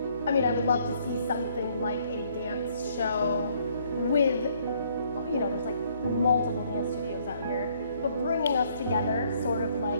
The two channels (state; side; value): inverted; both; correlation -0.66